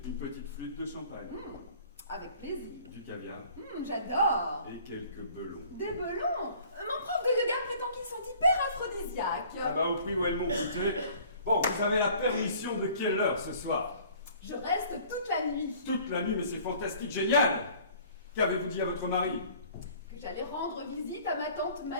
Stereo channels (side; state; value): both; inverted; correlation -0.52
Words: Une petite flûte de champagne. Avec plaisir. Du caviar. J'adore. Et quelques belons. Des belons. Mon prof de yoga prétend qu'ils sont hyper aphrodisiaques. Ah bah au prix où elles m'ont coûté. Bon, vous avez la permission de quelle heure ce soir? Je reste toute la nuit. Toute la nuit, mais c'est fantastique, génial! Qu'avez-vous dit à votre mari? Que j'allais rendre visite à ma tante